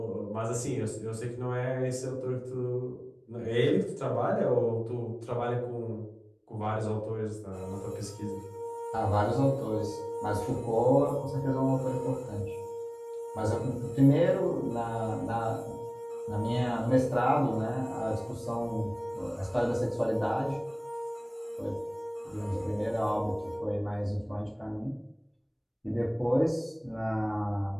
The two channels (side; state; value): both; identical; correlation 1.00